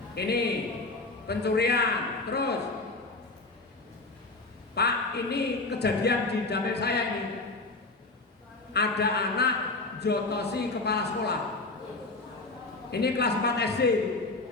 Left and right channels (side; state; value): right; quieter; 3.4 dB